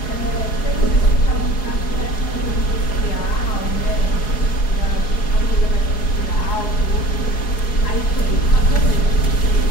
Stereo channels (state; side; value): late; right; 4.8 ms